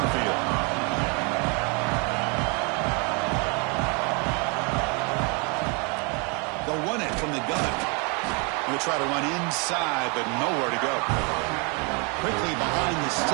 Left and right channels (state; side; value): quieter; left; 33.3 dB